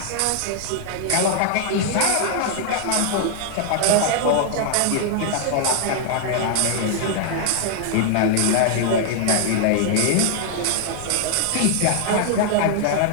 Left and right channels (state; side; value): different; both; correlation 0.00